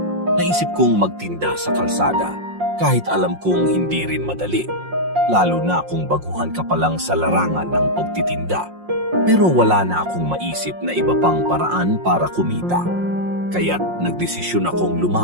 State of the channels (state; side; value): late; left; 5.6 ms